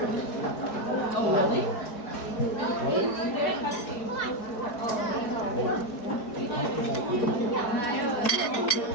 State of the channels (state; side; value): late; right; 4.7 ms